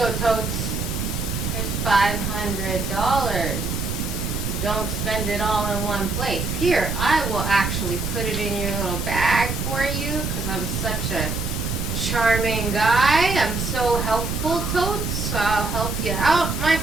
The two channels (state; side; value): noise; right; rumble, 3 dB below the sound